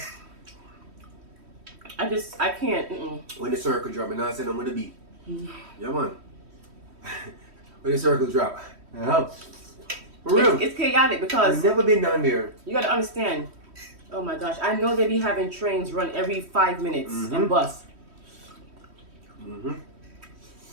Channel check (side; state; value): left; late; 3.1 ms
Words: I can't. When the circle drop, and I said I'm gonna be. Yeah, man. When the circle drop. For real. It's chaotic because I've never been down there. you gotta understand. Oh my gosh, I know they be having trains run every 5 minutes and bus.